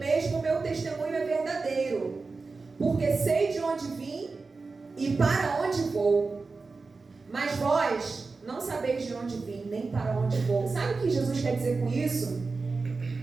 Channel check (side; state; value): left; quieter; 4.1 dB